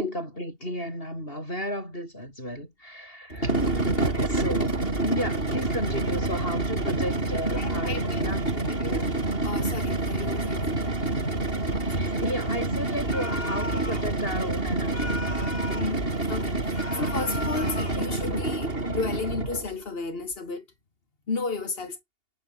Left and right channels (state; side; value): late; right; 2.8 ms